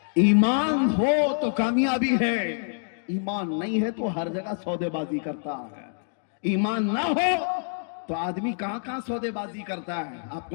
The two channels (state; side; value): silent; right; digital silence